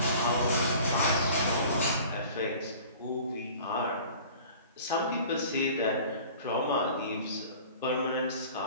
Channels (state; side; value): inverted; both; correlation -0.45